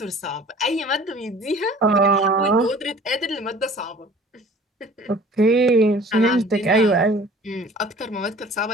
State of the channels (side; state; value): both; normal; correlation 0.48